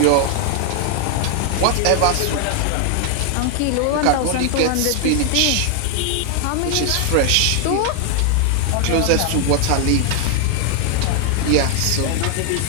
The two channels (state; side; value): different; both; correlation 0.00